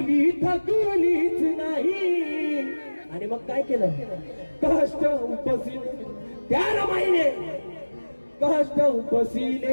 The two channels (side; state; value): both; inverted; correlation -1.00